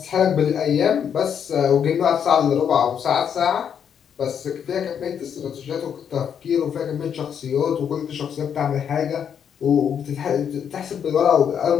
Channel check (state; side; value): quieter; right; 8.1 dB